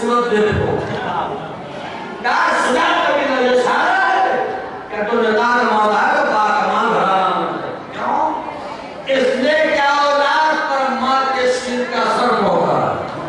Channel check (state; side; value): identical; both; correlation 1.00